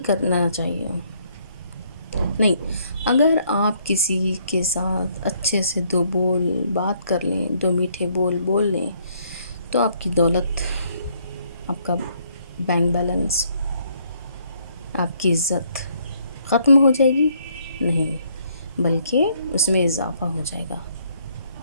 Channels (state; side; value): inverted; both; correlation -0.68